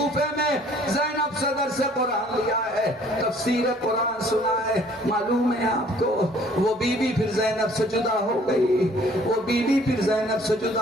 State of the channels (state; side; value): normal; both; correlation 0.57